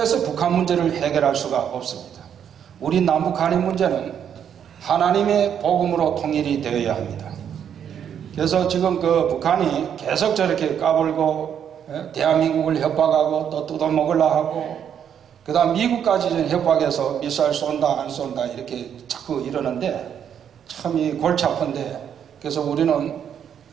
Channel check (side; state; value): left; quieter; 8.6 dB